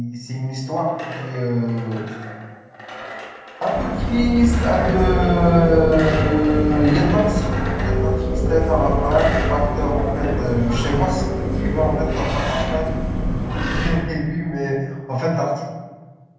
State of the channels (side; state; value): both; identical; correlation 1.00